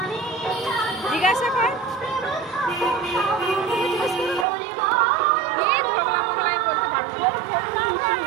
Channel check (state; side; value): drops out; left; at 4.5 s